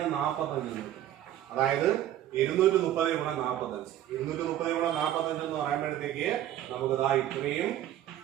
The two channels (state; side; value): quieter; left; 12.2 dB